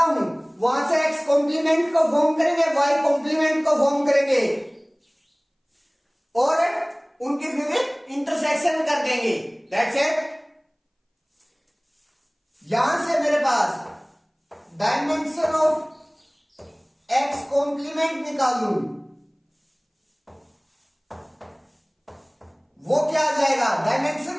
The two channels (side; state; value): both; identical; correlation 1.00